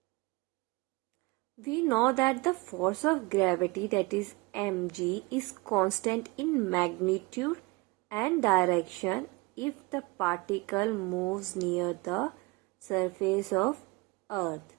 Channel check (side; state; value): left; quieter; 24.8 dB